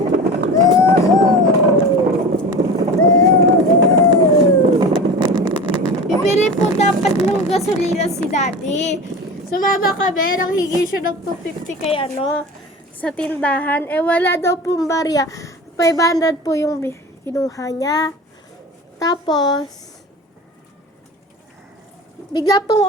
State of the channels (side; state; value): both; normal; correlation 0.33